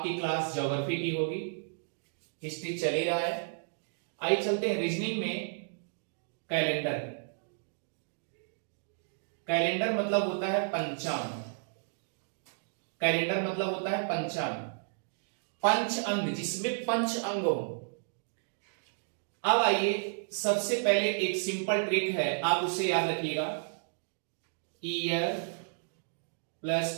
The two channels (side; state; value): left; silent; digital silence